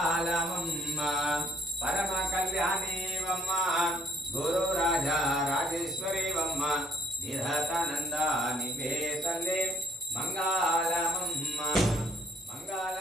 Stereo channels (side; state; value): both; normal; correlation 0.65